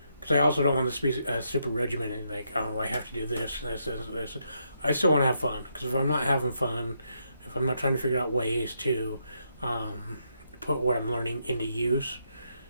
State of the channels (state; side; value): inverted; both; correlation -0.79